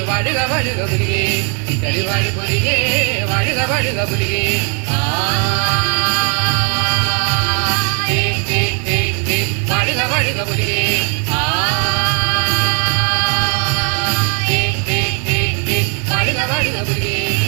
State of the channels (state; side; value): quieter; left; 38.2 dB